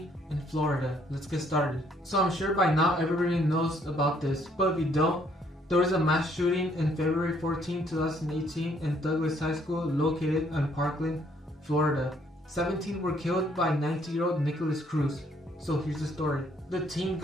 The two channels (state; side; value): normal; both; correlation 0.66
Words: in Florida. Let's get started. So I'm sure by now everybody knows about this, but if you don't, there was a mass shooting in February 14, 2018 in Douglas High School located in Parkland, Florida. 17 were killed by 19-year-old Nikolas Cruz. So here's the story. The teen